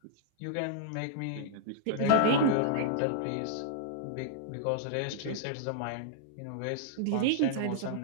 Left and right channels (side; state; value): both; different; correlation -0.01